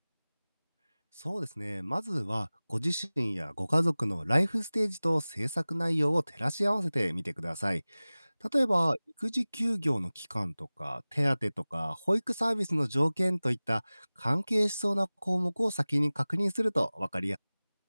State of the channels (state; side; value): inverted; both; correlation -0.99